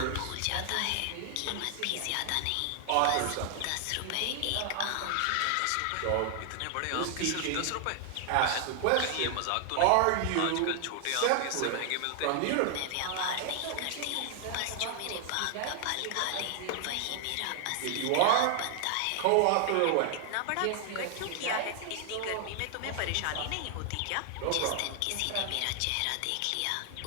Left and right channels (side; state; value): both; different; correlation 0.00